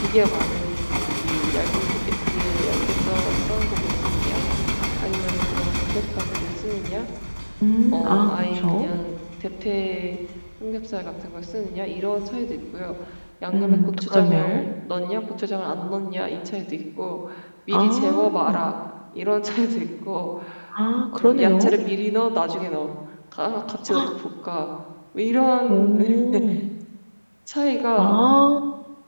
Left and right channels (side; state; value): both; inverted; correlation -1.00